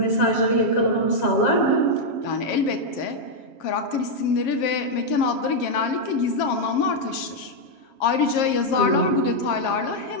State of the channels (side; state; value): right; late; 7.4 ms